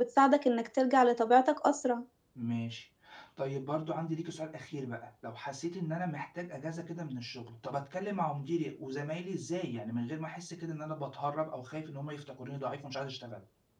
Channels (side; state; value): both; identical; correlation 1.00